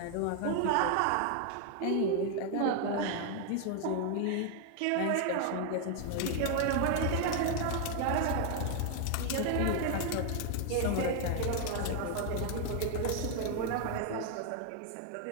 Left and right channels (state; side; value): different; both; correlation 0.00